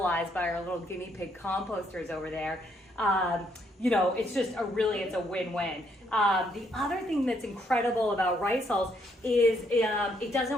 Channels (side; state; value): both; normal; correlation 0.72